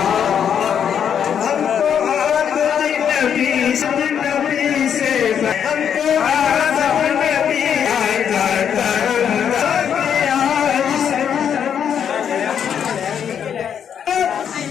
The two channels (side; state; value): right; quieter; 8.3 dB